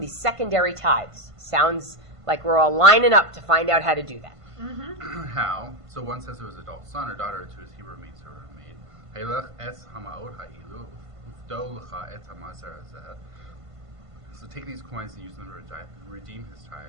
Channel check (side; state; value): left; late; 1.5 ms